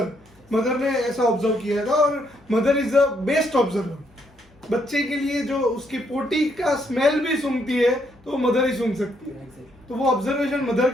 mother ने ऐसा ऑब्जर्व किया था, और mother is the best observer. बच्चे के लिए जो उसकी पोटी का स्मेल भी सूंघती है तो मदर ही सूंघ सकती है. तो वो ऑब्जर्वेशन मदर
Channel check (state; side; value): noise; left; hum, 30 dB below the sound